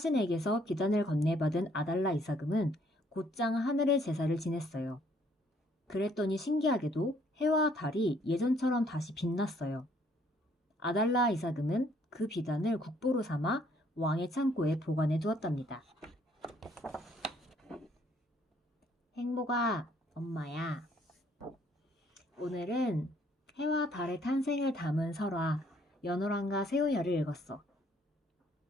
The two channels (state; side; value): normal; both; correlation 0.64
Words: 비단을 건네받은 아달라 이사금은 곧장 하늘의 제사를 지냈어요. 그랬더니 신기하게도 해와 달이 예전처럼 다시 빛났어요. 아달라 이사금은 그 비단을 국보로 삼아 왕의 창고에 보관해 두었답니다. 행복아, 엄마야. 오늘은 해와 달의 탄생을 담은 설화 연호랑과 새우녀를 읽었어.